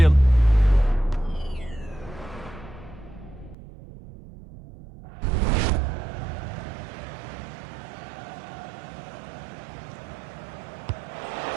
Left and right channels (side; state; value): left; drops out; at 3.6 s